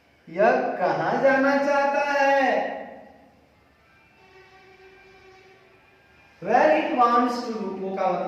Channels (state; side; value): identical; both; correlation 1.00